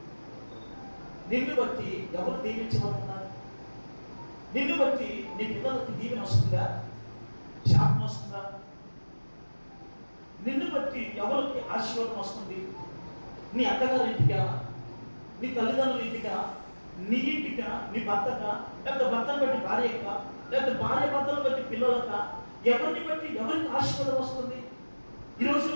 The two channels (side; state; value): both; inverted; correlation -1.00